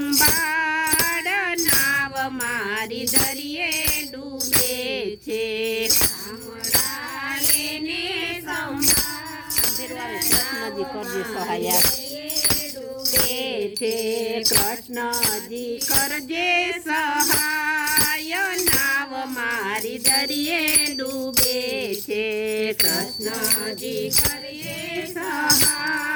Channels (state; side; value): identical; both; correlation 1.00